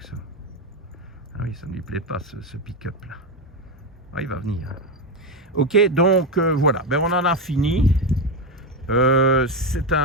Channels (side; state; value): both; normal; correlation 0.11